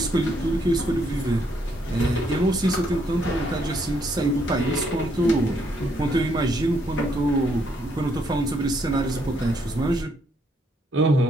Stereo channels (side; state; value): both; normal; correlation 0.72